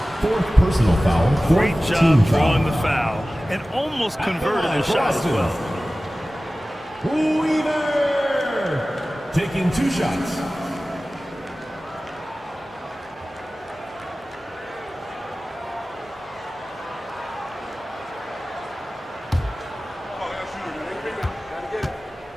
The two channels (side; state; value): both; normal; correlation 0.97